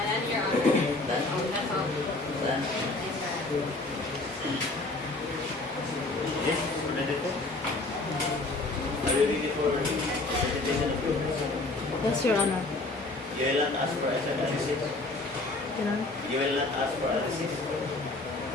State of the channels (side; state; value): right; quieter; 3.0 dB